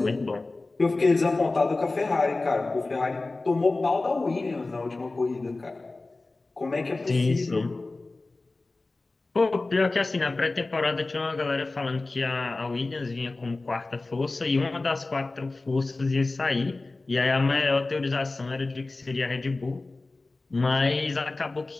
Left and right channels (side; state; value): right; quieter; 3.3 dB